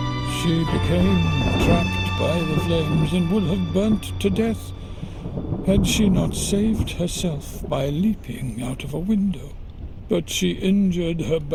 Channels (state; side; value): identical; both; correlation 1.00